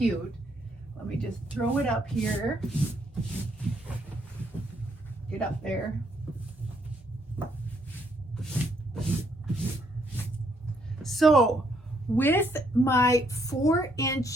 Let me just throw it up here. Get up there. So with my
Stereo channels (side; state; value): both; normal; correlation 0.71